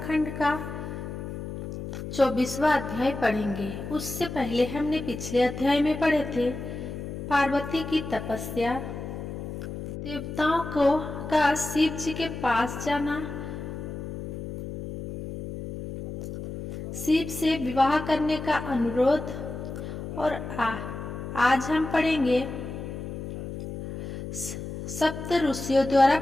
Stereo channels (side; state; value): left; noise; hum, 8 dB below the sound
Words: का 24वां अध्याय पढ़ेंगे। उससे पहले हमने पिछले अध्याय में पढ़े थे पार्वती की तपस्या, देवताओं का शिव जी के पास जाना, शिव से विवाह करने का अनुरोध, और आज हम पढ़ेंगे सप्त ऋषियों द्वारा